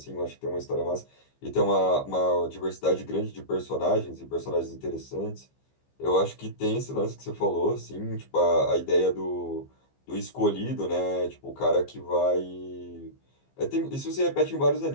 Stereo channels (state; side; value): late; right; 15 ms